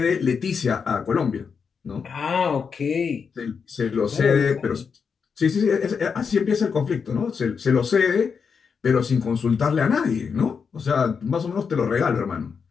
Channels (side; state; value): right; quieter; 6.0 dB